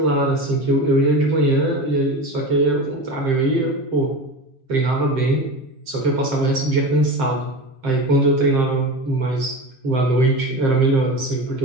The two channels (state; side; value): late; left; 7.6 ms